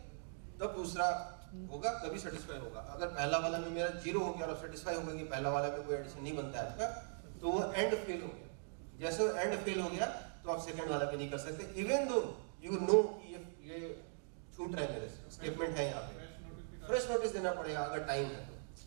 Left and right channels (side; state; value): left; silent; digital silence